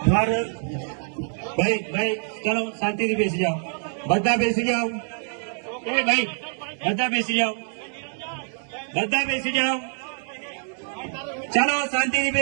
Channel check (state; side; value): silent; left; 62 dB below the other